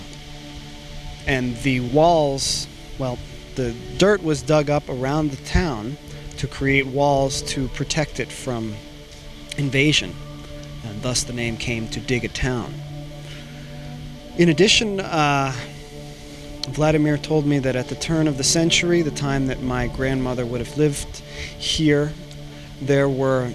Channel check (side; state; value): both; identical; correlation 1.00